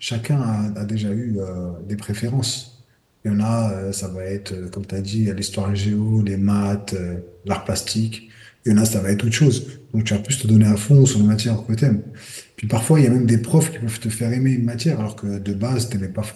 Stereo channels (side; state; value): both; identical; correlation 1.00